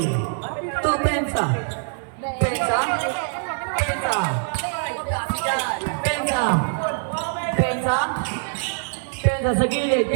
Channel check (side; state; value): left; silent; 63 dB below the other